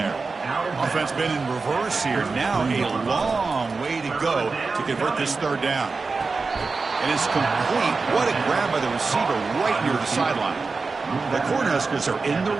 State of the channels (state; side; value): quieter; left; 4.2 dB